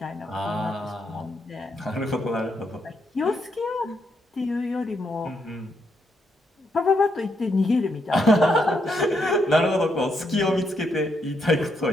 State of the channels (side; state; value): both; normal; correlation 0.78